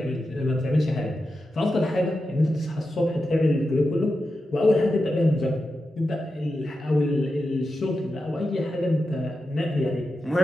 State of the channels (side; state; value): both; normal; correlation 0.90